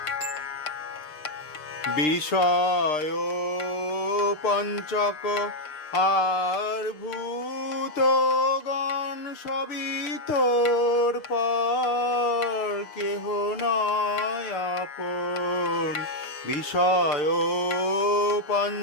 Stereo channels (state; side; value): late; right; 6.6 ms